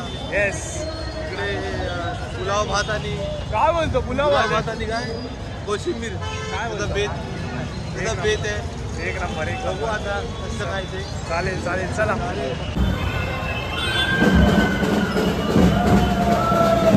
येस. इकडे पुलाव भात आणि काय बोलतो पुलाव भात आणि काय कोशिंबीर काय बोलतो बेत आहे. एक नंबर. एक बघू आता कसं काय ते. चालेल चालेल चला.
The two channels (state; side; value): identical; both; correlation 1.00